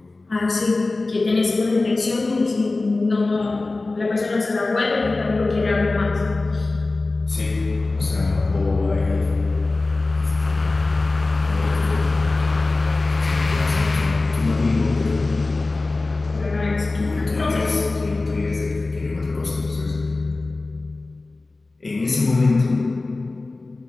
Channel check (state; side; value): quieter; right; 3.3 dB